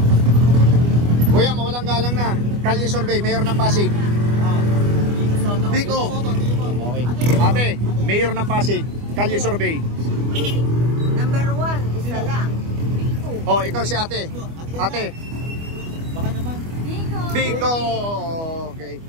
Kuya, mawalang galang na. Kalye Survey, mayor ng Pasig. Biko. Okay. Ate, mayor ng Pasig. Kalye Survey. Number 1, isa lang. Bigo. Oh, ikaw si ate. Ate, Baka naman. Bigo. Biko. Okay.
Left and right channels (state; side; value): late; left; 25 ms